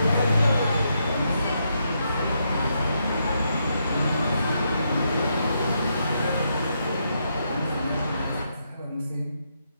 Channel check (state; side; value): inverted; both; correlation -0.80